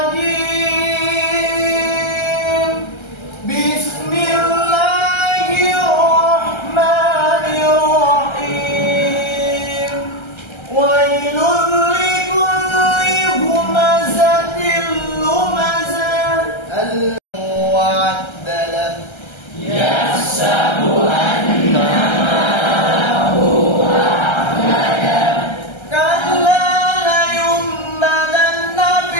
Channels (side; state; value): right; late; 1.3 ms